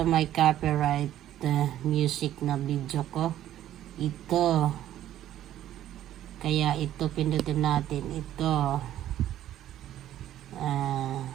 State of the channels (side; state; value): left; quieter; 12.3 dB